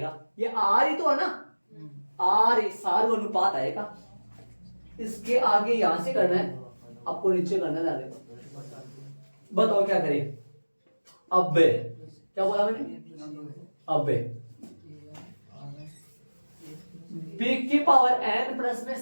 ये आर ही तो है ना, आर सार अनुपात आएगा। इसके आगे यहां से करना है, आपको नीचे करना है। बताओ क्या करें? अब क्या बोला मैंने? अब b की पावर n प्लस में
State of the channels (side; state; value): both; inverted; correlation -1.00